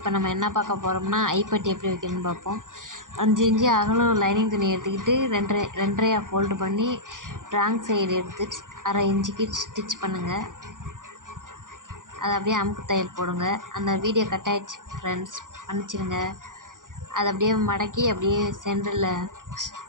நம்ம என்ன பார்க்க போகிறோம்னா ஐப்பட்டி எப்படி வைக்கணும்னு பார்ப்போம். 5 இன்ச்சு அகலம் லைனிங் துணி எடுத்துக்கிட்டு ரெண்டரையாக ஃபோல்டு பண்ணி ராங் சைடு எடுத்து அரை இன்ச்சுக்கு ஸ்டிச் பண்ணுங்கள். அதை அப்படியே அமுக்கு தையல் போடுங்க. அந்த வீடியோ கட் ஆகிடுச்சு ஃப்ரெண்ட்ஸ், மன்னிச்சிடுங்க. அதை அப்படியே மடக்கி அப்படியே சென்டரில்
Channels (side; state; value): left; late; 0.88 ms